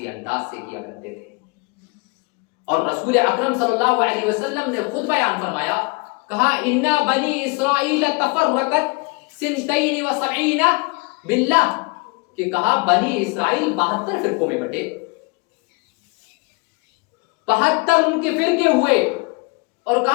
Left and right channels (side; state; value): right; quieter; 29.5 dB